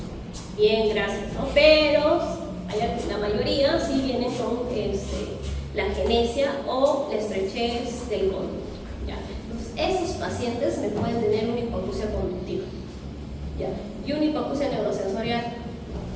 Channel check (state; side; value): identical; both; correlation 1.00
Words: Bien, gracias, ¿no? Pero la mayoría sí vienen con la agenesia o la estrechez del conducto. ¿Ya? Entonces, esos pacientes me pueden tener una hipoacusia conductiva. ¿Ya? Y una hipoacusia neurosensorial.